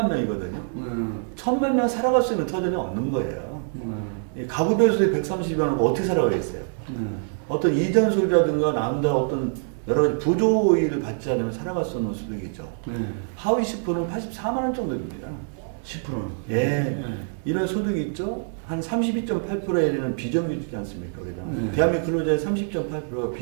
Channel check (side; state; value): left; silent; digital silence